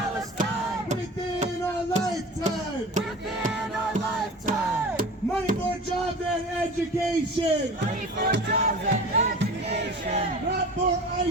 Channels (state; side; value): normal; both; correlation 0.36